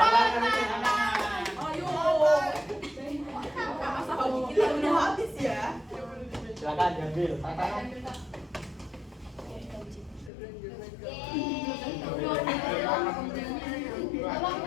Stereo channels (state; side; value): drops out; right; at 10.3 s